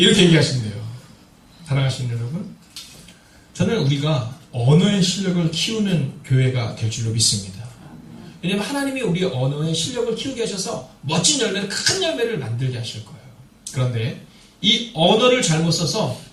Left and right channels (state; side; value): identical; both; correlation 1.00